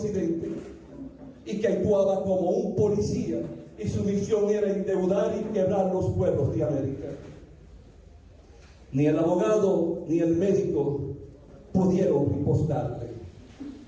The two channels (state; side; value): identical; both; correlation 1.00